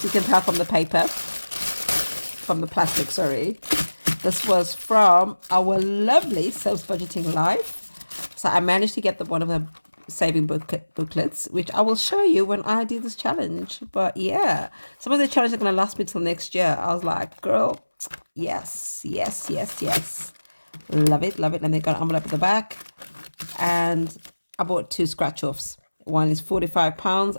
you can tell from the paper, from the plastic, sorry. This was from our lovely Self Budgeting Life. So I managed to get one of her saving booklets, which I will show you when I do this challenge. But yeah, some of the challenges are going to last me till next year. I was like, girl, yes, yes, yes, yes. Love it, love it. And they got an envelope at the back. And I bought 2 scratch-offs. One is £45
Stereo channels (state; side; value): inverted; both; correlation -1.00